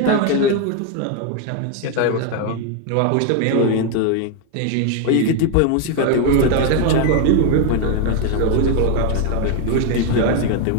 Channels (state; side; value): different; both; correlation 0.01